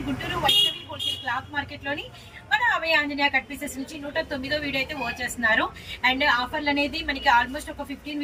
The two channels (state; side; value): identical; both; correlation 1.00